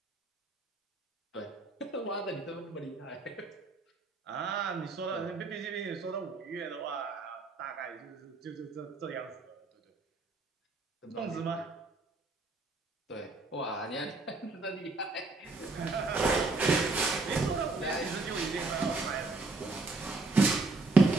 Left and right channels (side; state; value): left; quieter; 3.5 dB